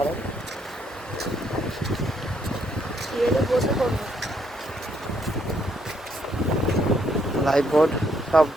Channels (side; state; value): both; normal; correlation 0.72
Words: বসে পড়বো। লাইফ বোর্ড সব